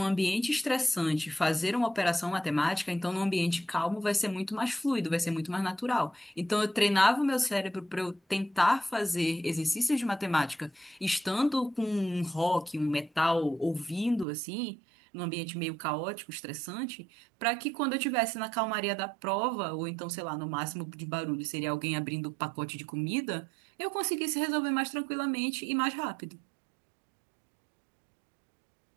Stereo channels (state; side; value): drops out; left; at 14.2 s